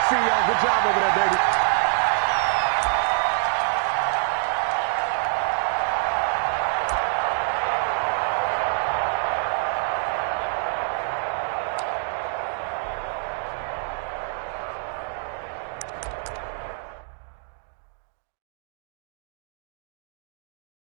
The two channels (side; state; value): left; silent; digital silence